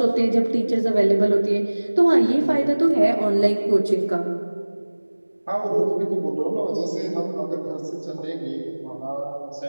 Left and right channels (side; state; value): both; inverted; correlation -1.00